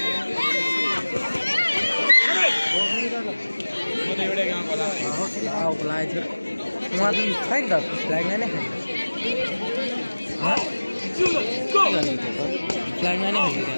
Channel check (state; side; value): inverted; both; correlation -1.00